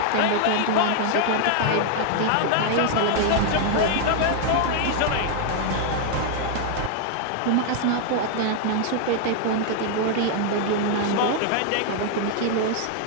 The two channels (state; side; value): different; both; correlation 0.00